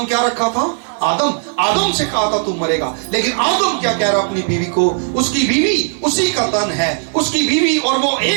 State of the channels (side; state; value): left; silent; 60 dB below the other